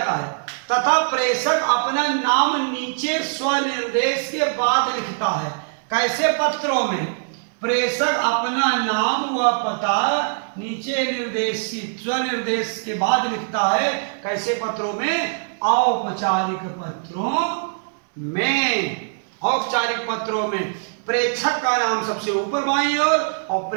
है, तथा प्रेषक अपना नाम नीचे स्वनिर्देश के बाद लिखता है। कैसे पत्रों में? प्रेषक अपना नाम व पता नीचे निर्देशित स्वनिर्देश के बाद लिखता है। कैसे पत्रों में? औपचारिक पत्रों में। औपचारिक पत्रों में प्रेषक का नाम सबसे ऊपर बाईं ओर और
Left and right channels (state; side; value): silent; left; digital silence